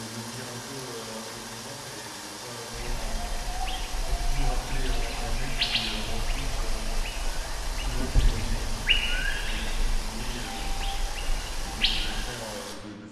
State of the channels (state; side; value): identical; both; correlation 1.00